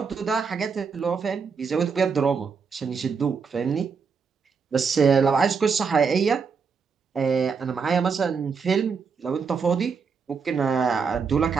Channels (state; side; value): quieter; left; 5.6 dB